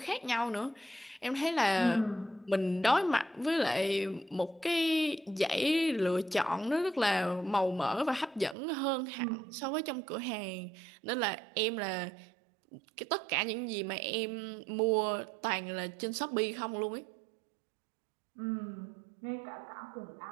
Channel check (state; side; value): drops out; left; at 8.6 s